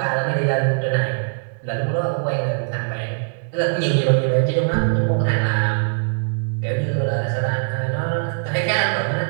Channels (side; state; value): left; silent; 65 dB below the other